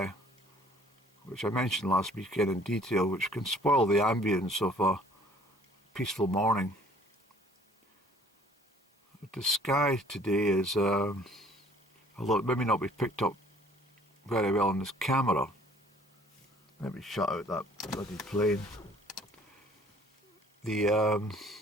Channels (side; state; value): both; normal; correlation 0.56